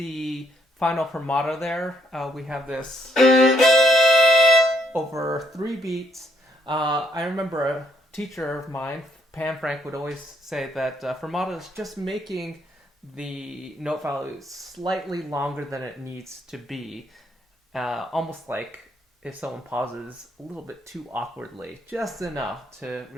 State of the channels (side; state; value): both; normal; correlation 0.71